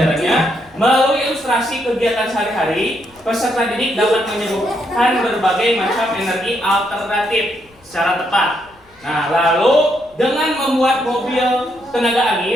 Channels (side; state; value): left; noise; rumble, 29 dB below the sound